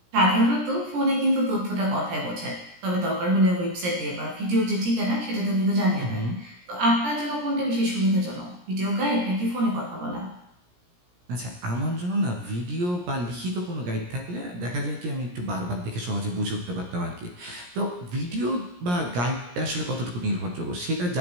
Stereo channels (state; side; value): late; left; 17 ms